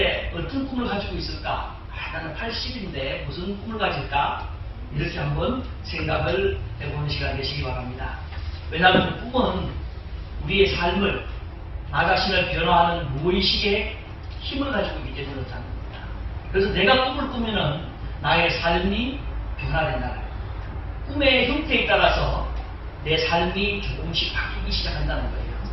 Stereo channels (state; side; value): identical; both; correlation 1.00